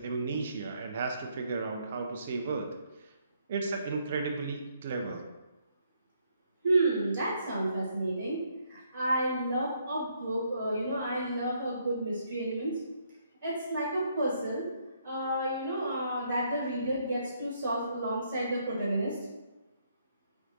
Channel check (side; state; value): both; inverted; correlation -0.72